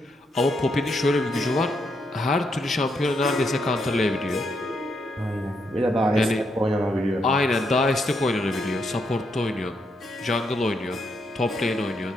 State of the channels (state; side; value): normal; both; correlation 0.79